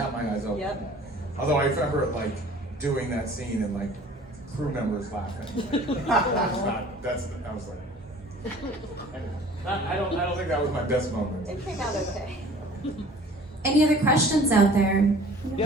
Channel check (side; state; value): both; normal; correlation 0.48